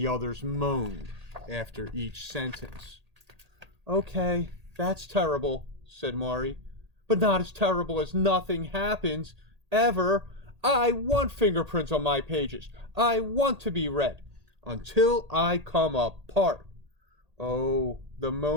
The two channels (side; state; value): left; late; 1.8 ms